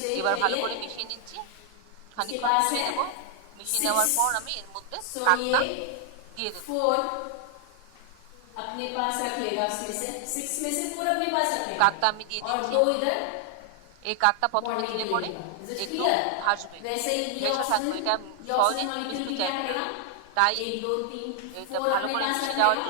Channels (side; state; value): both; different; correlation 0.00